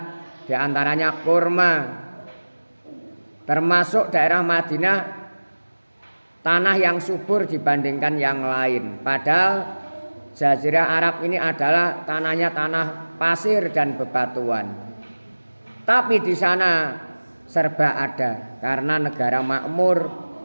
diantaranya kurma. Termasuk daerah Madinah tanah yang subur dibandingkan yang lain. Padahal Jazirah Arab ini adalah tanahnya tanah pasir dan bebatuan. Tapi di sana serba ada karena negara makmur,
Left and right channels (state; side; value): inverted; both; correlation -1.00